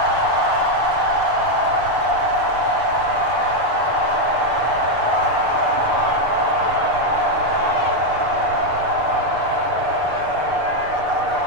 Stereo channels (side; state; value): left; late; 6.8 ms